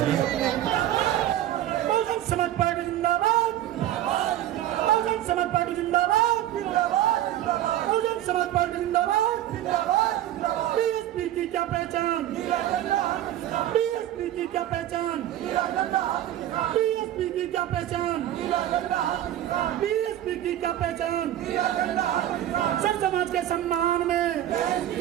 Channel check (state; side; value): quieter; left; 12.7 dB